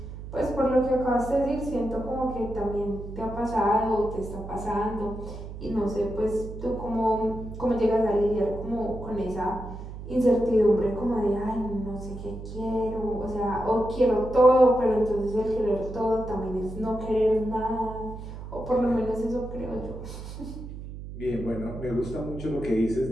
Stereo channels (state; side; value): noise; right; hum, 11 dB below the sound